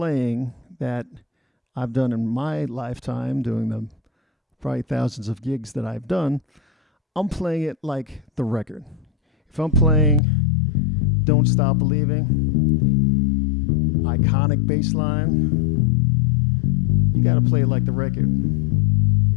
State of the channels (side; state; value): right; drops out; at 10.2 s